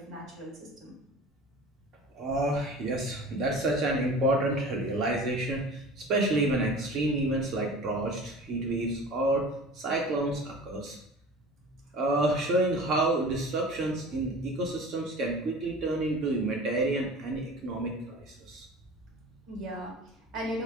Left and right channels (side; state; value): both; normal; correlation 0.40